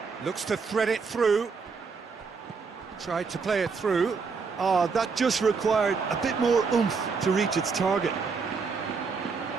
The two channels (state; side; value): quieter; left; 5.0 dB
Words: Looks to thread it through. Tried to play it through. Oh, that just required a bit more oomph to reach its target.